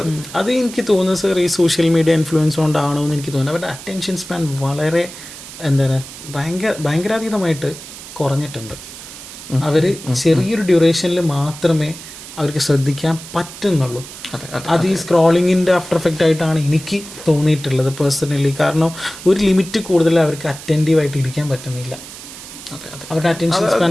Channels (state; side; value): noise; right; hiss, 14 dB below the sound